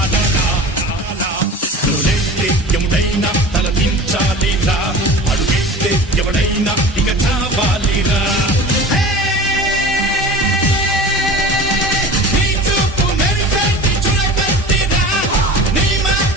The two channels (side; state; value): both; normal; correlation 0.37